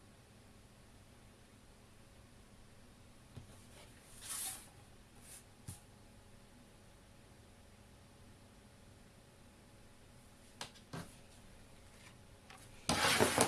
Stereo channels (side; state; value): both; identical; correlation 1.00